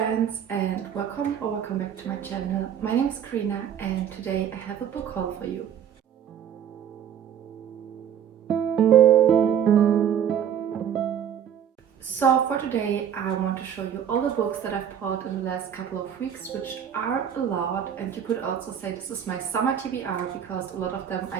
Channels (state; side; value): quieter; left; 8.9 dB